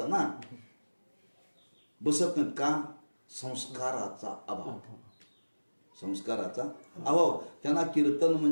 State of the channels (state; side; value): inverted; both; correlation -1.00